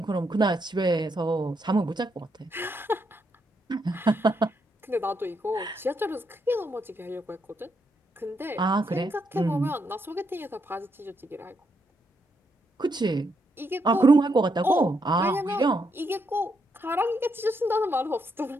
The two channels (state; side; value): normal; both; correlation 0.78